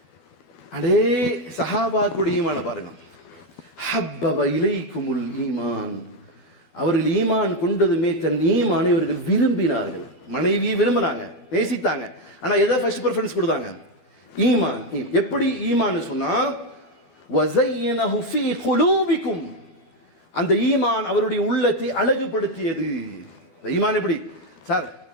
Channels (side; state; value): right; late; 12 ms